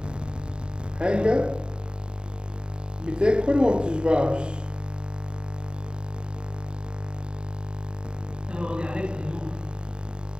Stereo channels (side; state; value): left; late; 0.050 ms